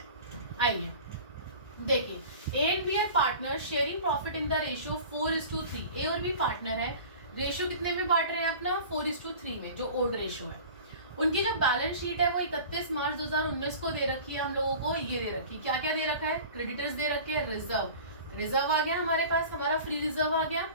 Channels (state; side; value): inverted; both; correlation -0.40